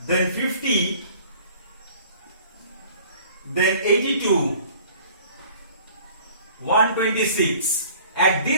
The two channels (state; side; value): inverted; both; correlation -0.50